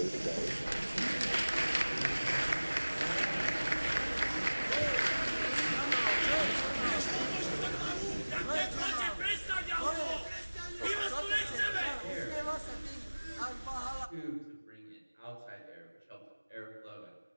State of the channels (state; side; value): inverted; both; correlation -1.00